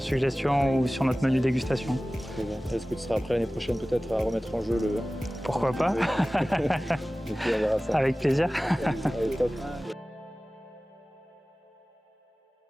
ou sur notre menu dégustation. Est-ce que tu seras prêt l'année prochaine peut-être à remettre en jeu le... Pourquoi pas. Et puis on verra ça. Avec plaisir. Allez, top.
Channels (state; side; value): normal; both; correlation 0.97